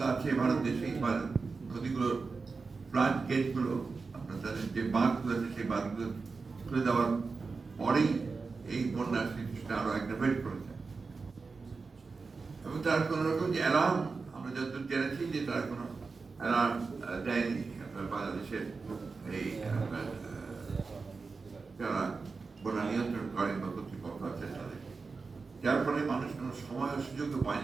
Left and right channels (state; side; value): quieter; left; 4.4 dB